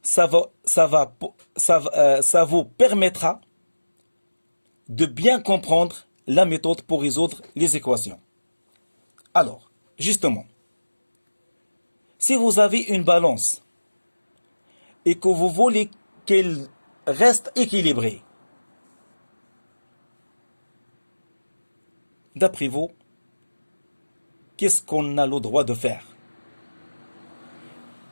ça vous permettra de bien comprendre la méthode pour résoudre les équations. Alors, justement, Si vous avez une balance et que vous voulez qu'elle reste équilibrée, d'après vous, qu'est-ce qu'on a le droit de faire?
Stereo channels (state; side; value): inverted; both; correlation -1.00